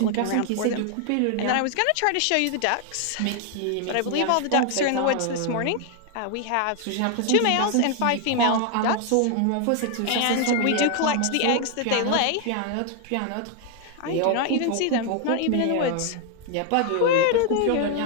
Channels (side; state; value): both; different; correlation 0.00